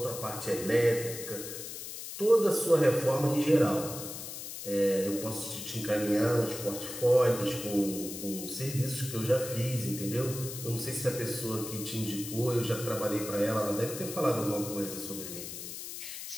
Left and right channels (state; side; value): noise; left; hiss, 9 dB below the sound